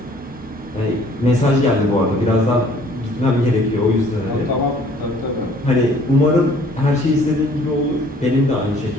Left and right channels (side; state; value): both; normal; correlation 0.56